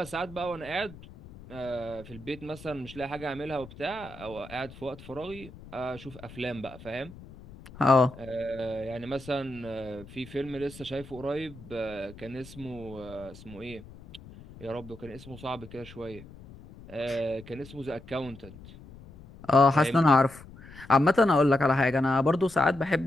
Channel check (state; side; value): noise; left; rumble, 18 dB below the sound